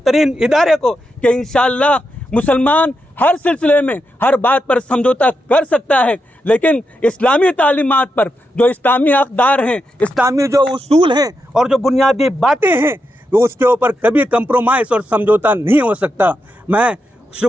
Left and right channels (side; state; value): both; normal; correlation 0.85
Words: इदारे को, कि इंशाअल्लाह मुसलमान हर सिलसिले में हर बात पर समझौता कर सकता है, लेकिन इस्लामी तालीमात पर जो इस्लामी अक़दार हैं, इस्लामी जो उसूल हैं और जो बुनियादी बातें हैं, तो उसके ऊपर कभी कंप्रोमाइज़ और समझौता नहीं हो सकता। मैं